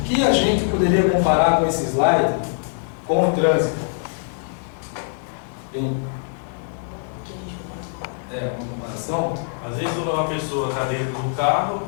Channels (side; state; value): right; silent; digital silence